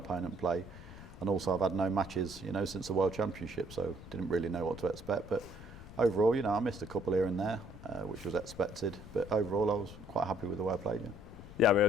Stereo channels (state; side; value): noise; left; rumble, 15 dB below the sound